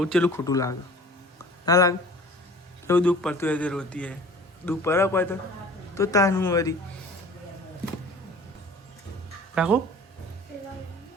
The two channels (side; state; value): both; normal; correlation 0.45